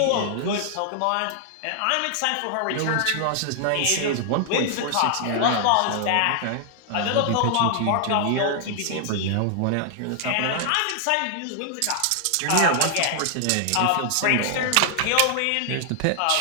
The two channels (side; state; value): both; different; correlation 0.00